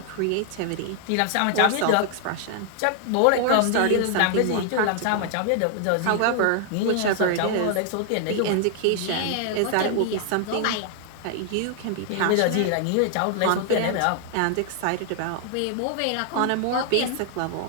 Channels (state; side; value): different; both; correlation 0.00